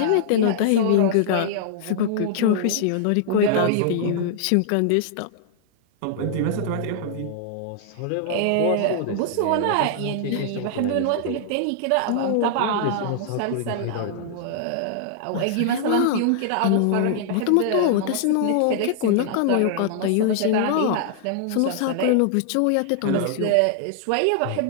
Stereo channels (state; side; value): different; both; correlation -0.01